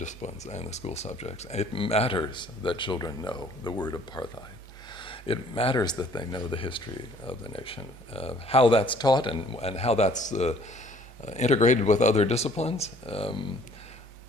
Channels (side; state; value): both; normal; correlation 0.57